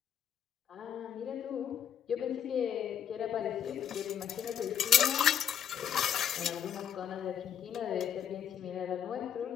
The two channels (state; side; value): quieter; right; 9.2 dB